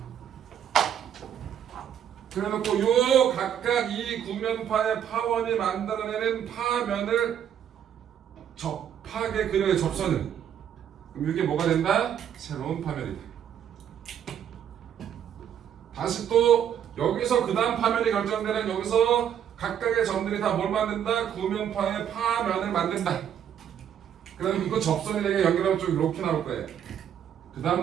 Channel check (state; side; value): quieter; left; 9.3 dB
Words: 그래놓고 요 각각 이 구면파의 파원이 만들어내는 파면을 접하게 그려요. 접선을. 그럼 이게 뭐가 된다? 새로운 파면이다. 다시 또 여기서 그 다음 파면이 결정되는 여기서 각각의 점들이 다 뭘 만든다? 구면파의 파면을 만든다. 그럼 이거 접선이 되게 연결하면 좀 이렇게 나올 거예요. 그